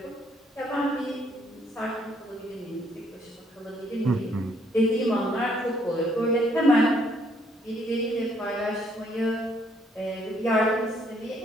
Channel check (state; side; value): normal; both; correlation 0.68